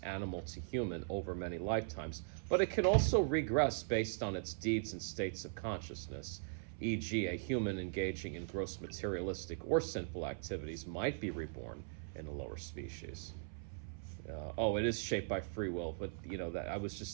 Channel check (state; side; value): silent; left; 51 dB below the other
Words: animal to human, over many lifetimes, but it can also regress based on its deeds and states of consciousness. E.g., a human engaging in gross materialistic or sinful activities might be reborn in a lower species. It is shaped by free will, but you know that I was